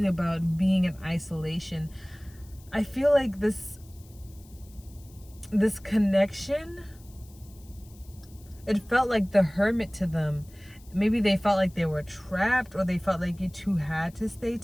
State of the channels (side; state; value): left; noise; hiss, 26 dB below the sound